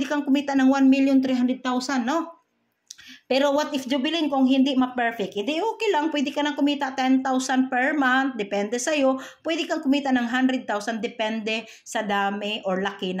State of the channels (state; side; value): identical; both; correlation 1.00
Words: kang kumita ng 1,300,000, no? Pero what if, Jubilin, kung hindi ma-perfect? Hindi okay lang, pwede ka nang kumita 10,000 per month, depende sa'yo. Pwede kang kumita ng 100,000, depende sa dami or laki